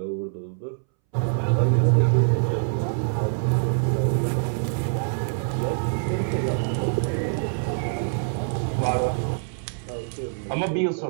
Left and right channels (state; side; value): silent; left; 62 dB below the other